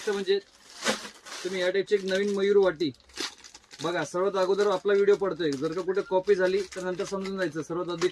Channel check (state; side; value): identical; both; correlation 1.00